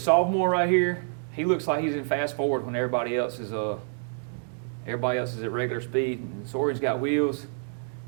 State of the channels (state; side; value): silent; left; digital silence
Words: right here. He looks like he's in fast forward when everybody else is at regular speed. And Zorian's got wheels.